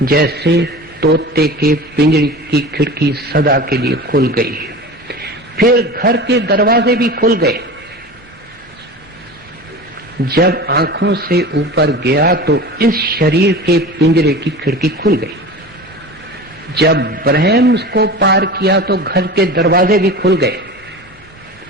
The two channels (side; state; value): both; normal; correlation 0.34